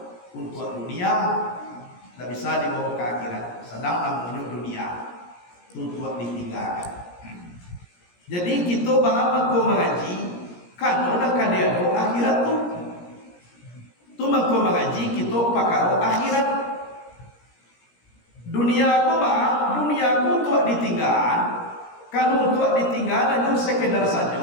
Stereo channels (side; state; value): right; late; 17 ms